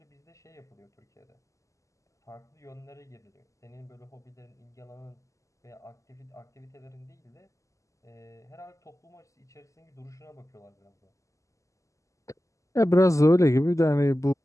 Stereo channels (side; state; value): right; late; 0.16 ms